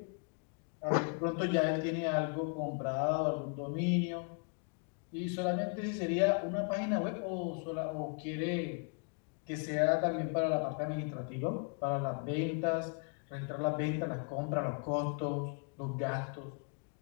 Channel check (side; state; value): right; quieter; 38.8 dB